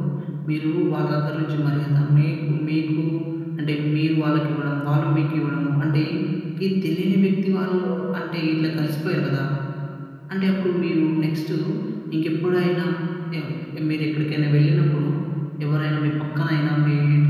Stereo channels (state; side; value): identical; both; correlation 1.00